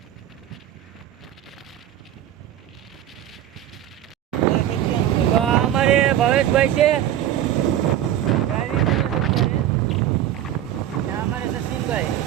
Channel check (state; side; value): quieter; left; 11.7 dB